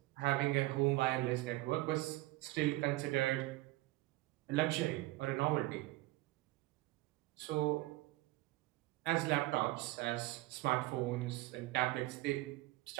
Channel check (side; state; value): left; quieter; 19.2 dB